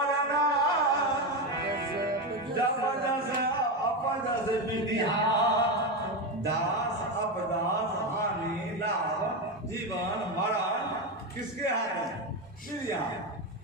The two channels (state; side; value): normal; both; correlation 0.14